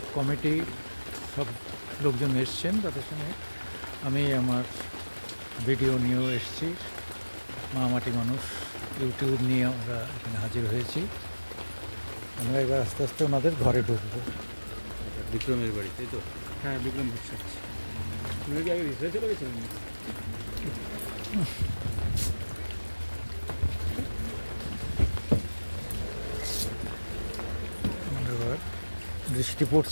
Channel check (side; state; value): both; inverted; correlation -1.00